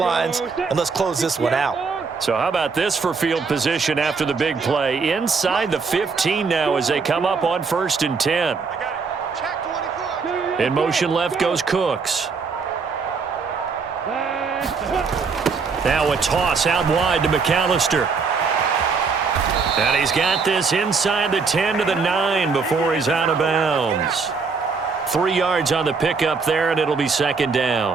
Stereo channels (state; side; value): quieter; left; 4.9 dB